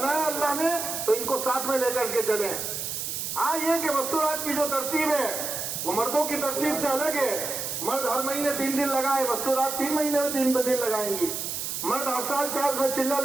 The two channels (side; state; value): right; noise; hiss, 4 dB below the sound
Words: اللہ نے تو ان کو ساتھ میں لے کر کے چلیں۔ ہاں یہ کہ مستورات کی جو ترتیب ہے وہ مردوں کی ترتیب سے الگ ہے۔ مرد ہر مہینے 3 دن لگائے، مستورات 3 مہینے میں 3 دن لگائیں گی۔ مرد ہر سال 4 میں چلہ